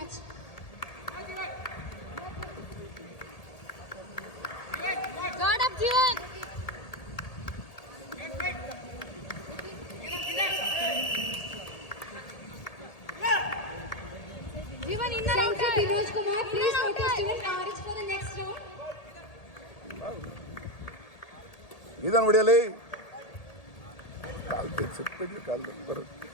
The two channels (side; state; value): right; late; 1.8 ms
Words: Guard up, Jivan. Jivan, inner outer. Vinod Kumar, please notice Jivan RH for the next round. ಇದನ್ನು ಹೊಡಿಯಲಿ. ಕಾಲ್ ತೆಗ್ಸಿಟ್ಬಿಡಿ, ಕಾಲ್ ಬರುತ್ತೆ.